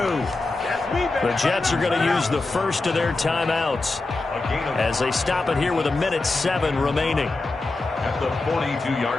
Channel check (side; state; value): right; quieter; 3.3 dB